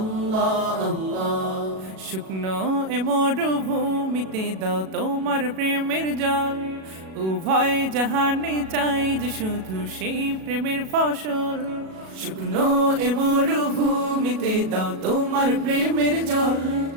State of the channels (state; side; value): late; left; 37 ms